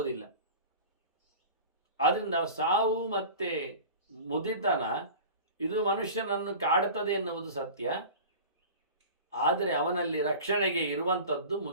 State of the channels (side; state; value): both; inverted; correlation -0.36